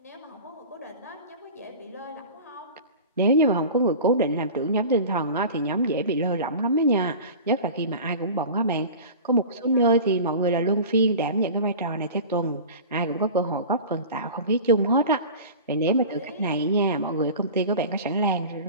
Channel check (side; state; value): both; inverted; correlation -0.35